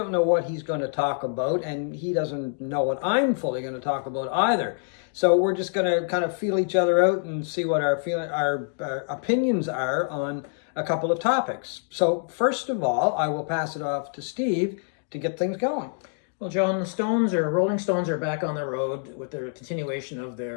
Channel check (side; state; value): right; silent; digital silence